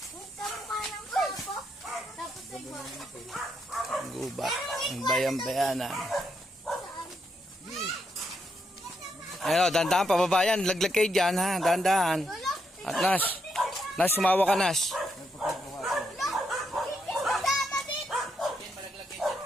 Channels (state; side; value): normal; both; correlation 0.79